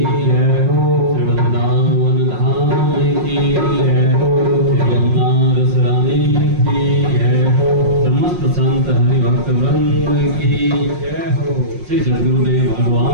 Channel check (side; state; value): left; late; 5.6 ms